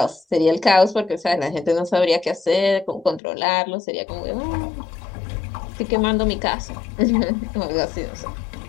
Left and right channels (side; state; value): right; drops out; at 3.2 s